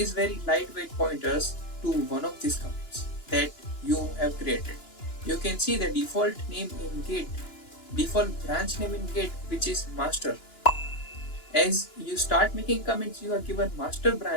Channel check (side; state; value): right; late; 2.9 ms